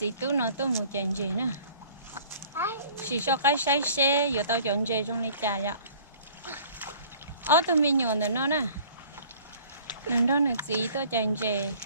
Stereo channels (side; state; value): both; inverted; correlation -0.51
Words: tu nó tu một chén gì nữa chỉ cho cái say xe giờ tao chọn gì trong này trà vậy ở tụi mình nhọn nữa nó nè nên đó là gì tao chọn gì